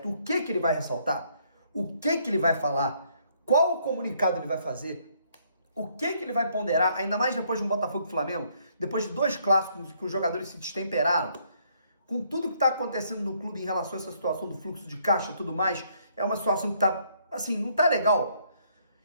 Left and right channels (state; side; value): inverted; both; correlation -0.68